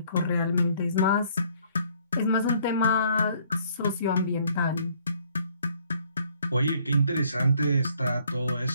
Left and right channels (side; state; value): both; inverted; correlation -0.63